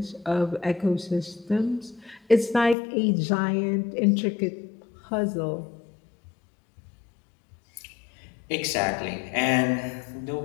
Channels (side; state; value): right; drops out; at 2.8 s